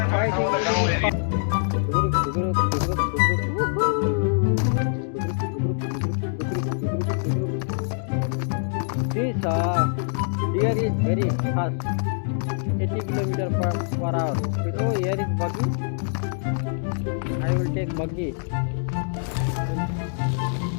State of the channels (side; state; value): right; silent; digital silence